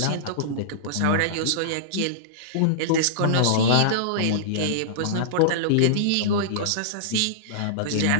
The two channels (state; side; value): different; both; correlation -0.02